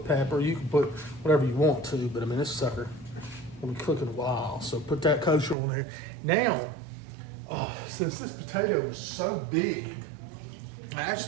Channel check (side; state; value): left; drops out; at 5.6 s